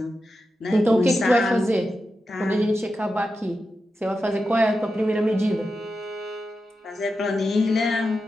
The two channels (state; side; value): normal; both; correlation 0.90